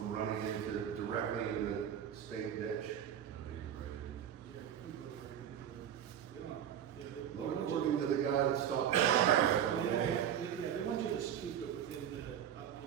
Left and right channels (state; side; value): quieter; left; 9.6 dB